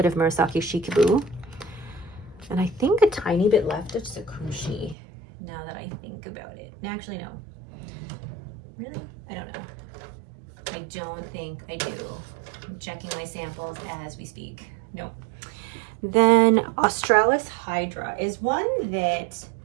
of Murasaki Shikibue. And I think a tiny bit left of Sakushi, now that I think about it. Actually, no. Really? I don't know. I don't think I do. I'm checking my samples as we speak. No. Then Australis Hydra is one that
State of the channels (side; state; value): left; drops out; at 5.0 s